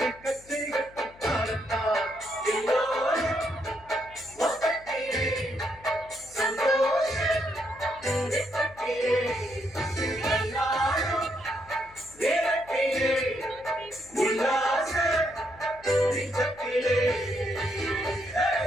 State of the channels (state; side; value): noise; left; hum, 24 dB below the sound